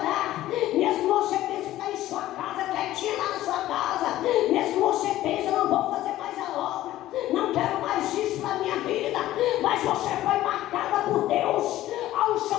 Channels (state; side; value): quieter; right; 14.6 dB